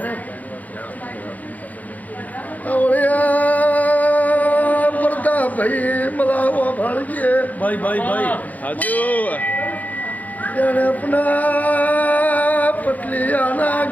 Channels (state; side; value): late; right; 0.078 ms